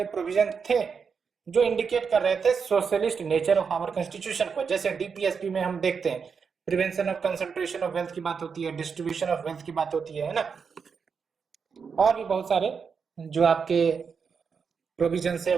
प्रोविजन थे जो इंडिकेट कर रहे थे socialist nature of our constitution को। जैसे डीपीएसपी में हम देखते हैं prevention of concentration of wealth की बात होती है, डिस्ट्रीब्यूशन ऑफ वेल्थ की बात होती है ना, और भी बहुत सारे जो आपके प्रोविजंस है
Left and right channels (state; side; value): quieter; left; 5.9 dB